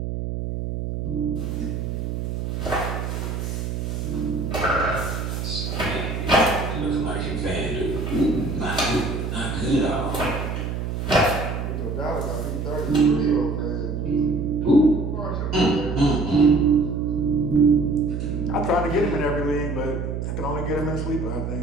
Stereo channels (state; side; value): noise; right; hum, 3 dB below the sound